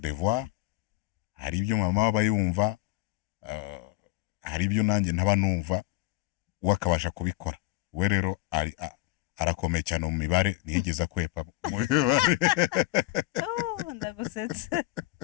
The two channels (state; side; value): quieter; right; 18.8 dB